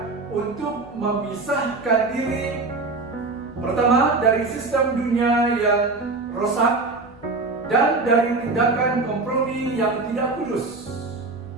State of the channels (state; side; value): quieter; left; 3.6 dB